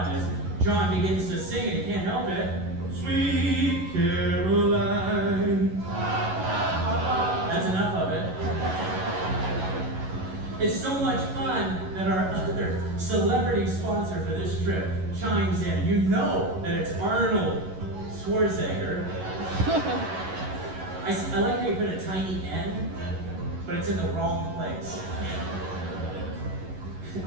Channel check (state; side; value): late; left; 11 ms